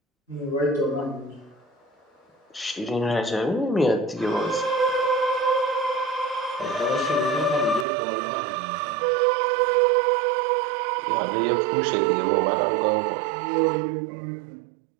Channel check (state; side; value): drops out; left; at 7.9 s